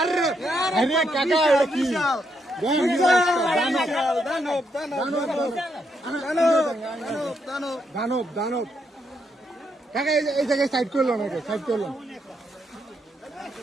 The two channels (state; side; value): normal; both; correlation 0.78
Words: দানব কাকা এই জায়গায় সাইড করলো নাকি সাইড করলো।